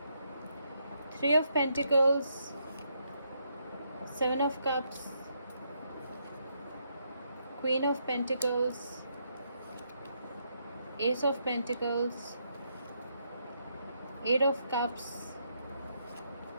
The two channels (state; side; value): inverted; both; correlation -0.77